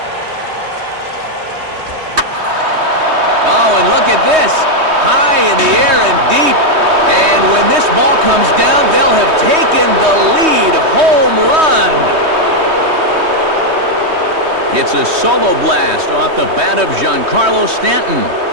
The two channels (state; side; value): late; left; 3.2 ms